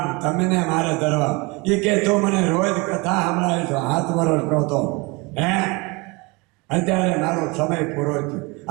તમને મારે ધરવા. એ કે તો મને રોજ કથા સંભળાવી છો, 7 વર્ષ નહોતો. અત્યારે મારો સમય પૂરો થયો.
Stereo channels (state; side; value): quieter; left; 26.8 dB